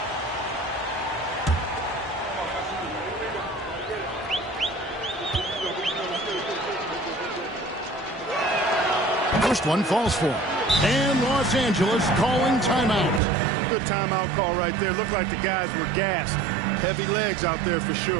First one falls for him. And Los Angeles calling timeout. Good timeout call right there. Looked like the guys were gassed. Heavy legs out there for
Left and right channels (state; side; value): drops out; left; at 13.2 s